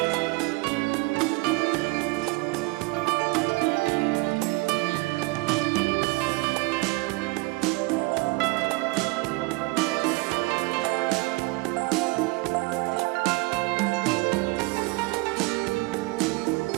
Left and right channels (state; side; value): quieter; left; 24.9 dB